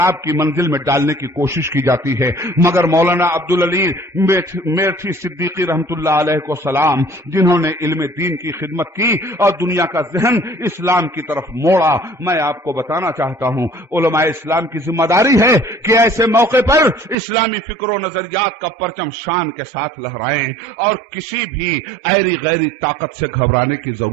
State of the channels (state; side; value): drops out; left; at 17.2 s